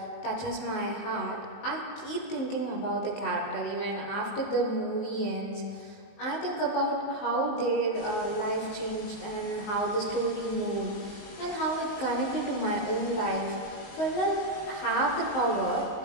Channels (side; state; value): right; late; 19 ms